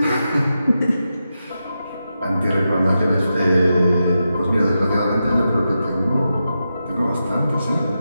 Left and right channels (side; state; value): both; inverted; correlation -0.88